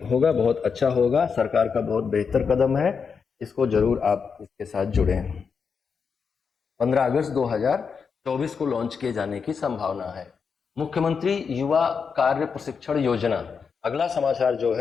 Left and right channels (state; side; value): quieter; right; 5.9 dB